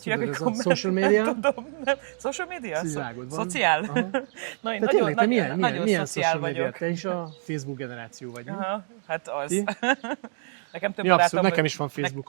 hívják, hogy tudod, ez a komment. social media? Nem tudom, nem. Social media? Szociálod van. Szociál? Aha. Na, én De nagyon, tényleg, te milyen nagyon szociál social media? vagyok. Te is a Facebook generáció vagy, nem? Aha, hát az. Ti? Nekem több Ja, abszolút, barátom nekem is van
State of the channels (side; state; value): left; silent; 61 dB below the other